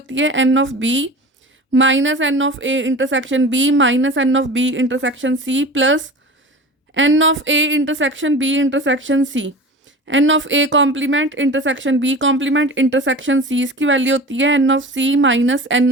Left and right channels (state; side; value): normal; both; correlation 0.35